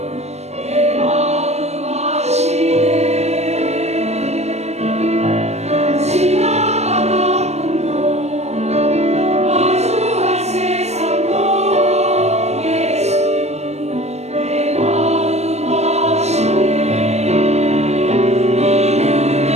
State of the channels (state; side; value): late; left; 0.32 ms